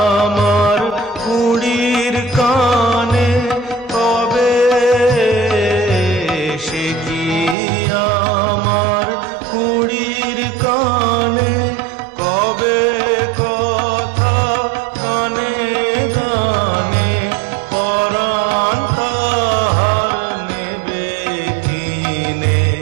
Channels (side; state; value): left; drops out; at 7.6 s